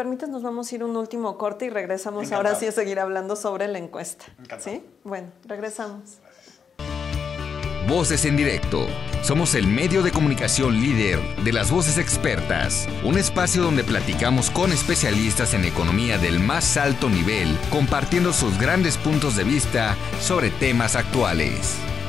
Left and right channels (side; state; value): right; quieter; 6.5 dB